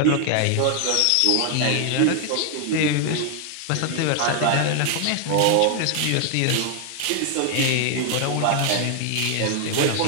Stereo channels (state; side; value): different; both; correlation 0.00